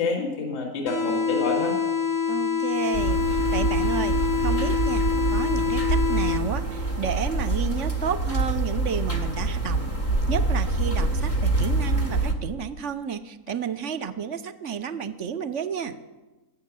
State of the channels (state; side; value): late; right; 3.8 ms